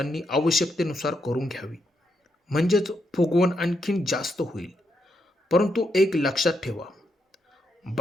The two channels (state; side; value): normal; both; correlation 0.80